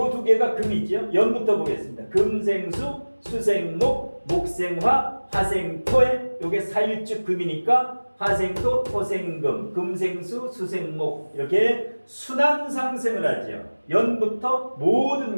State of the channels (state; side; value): inverted; both; correlation -1.00